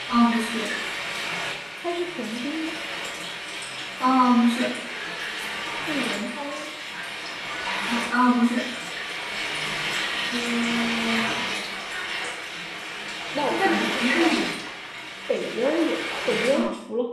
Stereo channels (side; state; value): both; identical; correlation 1.00